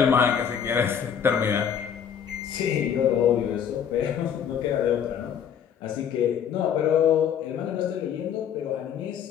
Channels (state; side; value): quieter; right; 8.2 dB